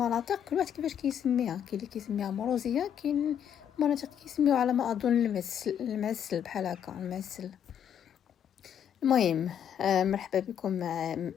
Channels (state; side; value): quieter; right; 9.0 dB